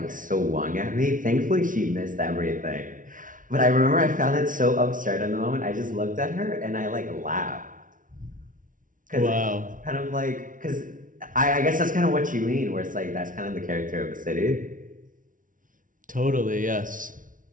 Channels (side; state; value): left; late; 0.38 ms